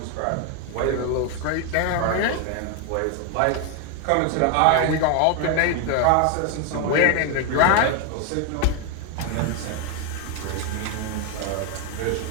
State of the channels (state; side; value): different; both; correlation 0.01